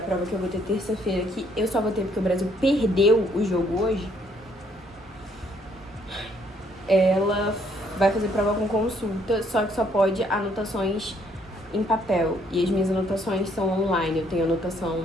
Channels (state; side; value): normal; both; correlation 0.67